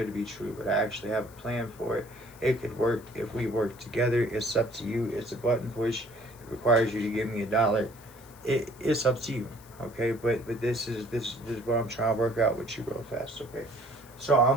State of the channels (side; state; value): left; noise; hiss, 23 dB below the sound